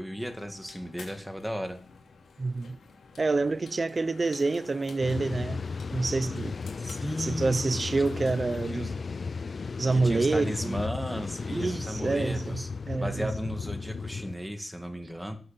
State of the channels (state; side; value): normal; both; correlation 0.95